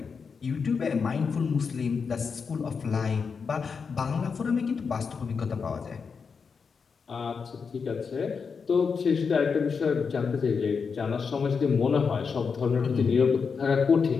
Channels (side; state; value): right; quieter; 5.6 dB